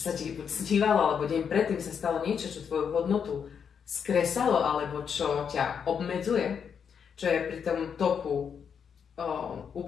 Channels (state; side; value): quieter; right; 7.1 dB